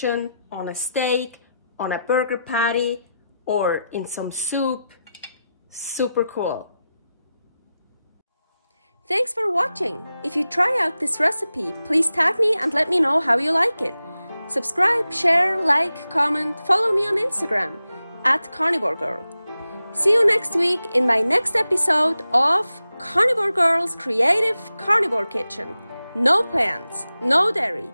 on a steak, on a burger patty, or in some soup. Super cool. Thanks for watching. If you try out this recipe, please tag me and let me know how you like it. Subscribe, share, like, comment, follow me on Instagram @carnivorgirl. See you next week in my next episode of Carnivore Girl's Creative Carnivore Kitchen. No plants, no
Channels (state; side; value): inverted; both; correlation -0.91